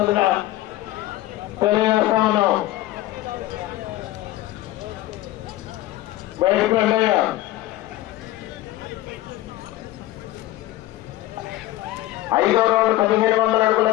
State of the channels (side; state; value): right; quieter; 16.0 dB